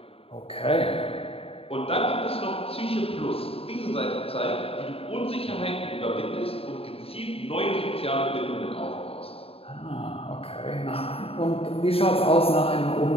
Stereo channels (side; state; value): right; late; 0.28 ms